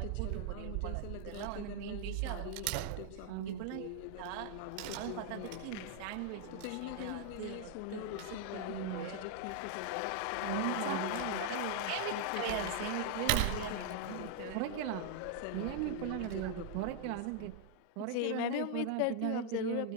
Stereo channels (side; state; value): both; different; correlation 0.00